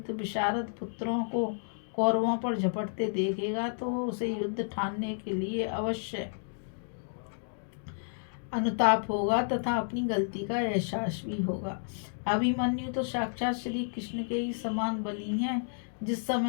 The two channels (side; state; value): right; silent; digital silence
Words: विशारद पुत्रों को कौरवों पर झपटते देखेगा तो उसे युद्ध ठानने के लिए अवश्य अनुताप होगा तथा अपनी गलती का एहसास भी होगा। अभिमन्यु तो साक्षात श्री कृष्ण के ही समान बली हैं। जिस